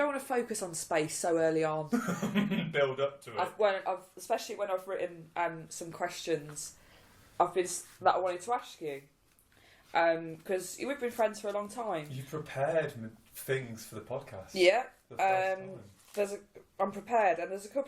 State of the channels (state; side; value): identical; both; correlation 1.00